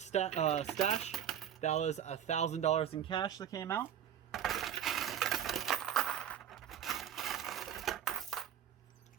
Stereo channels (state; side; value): quieter; left; 9.2 dB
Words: stash. That was $1,000 in cash that came out.